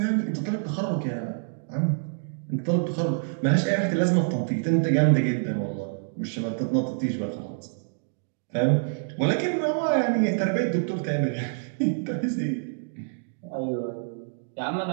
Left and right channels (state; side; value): silent; left; digital silence